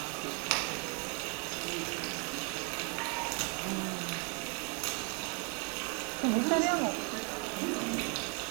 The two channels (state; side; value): quieter; left; 33.8 dB